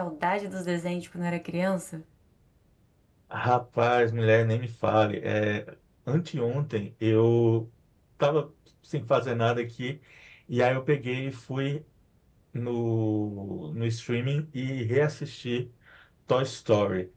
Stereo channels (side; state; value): both; identical; correlation 1.00